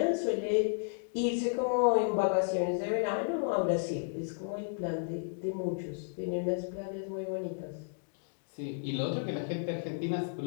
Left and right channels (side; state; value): right; silent; digital silence